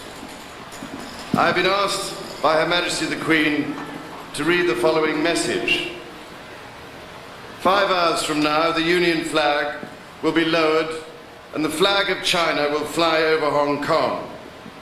I have been asked by Her Majesty the Queen to read the following message. 5 hours from now, the Union flag will be lowered and the flag of China will fly over Hong Kong.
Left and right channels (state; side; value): identical; both; correlation 1.00